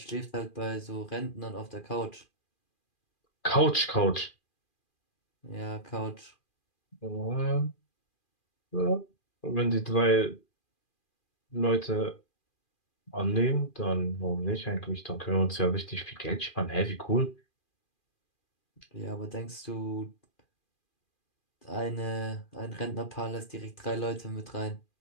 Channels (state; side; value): late; right; 2.4 ms